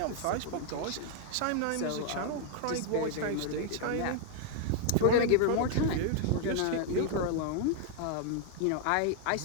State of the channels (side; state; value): both; different; correlation 0.00